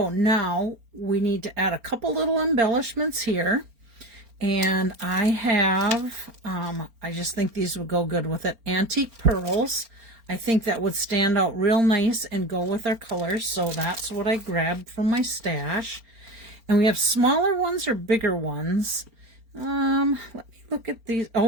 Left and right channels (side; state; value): left; late; 4.4 ms